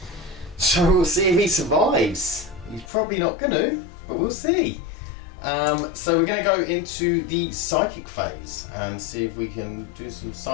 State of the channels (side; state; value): right; drops out; at 2.9 s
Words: So we'll see if he survives. He's probably not gonna, but we'll see. So we're going to go into the psychic phase and see if we can do some